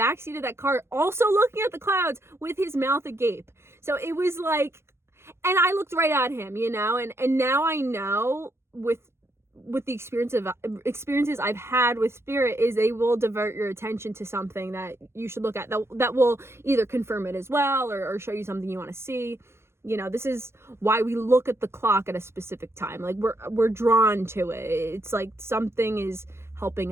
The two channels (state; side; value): late; left; 0.12 ms